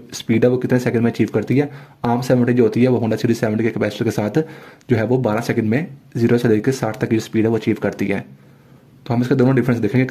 स्पीड है वो कितने सेकंड में अचीव करती है। आम 70 जो होती है वो होंडा सिटी 70 के कैपेसिटर के साथ जो है वो 12 सेकंड में 0 से लेकर 60 तक की जो स्पीड है वो अचीव करती है। तो हम इसके दोनों डिफरेंस देखेंगे,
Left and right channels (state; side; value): identical; both; correlation 1.00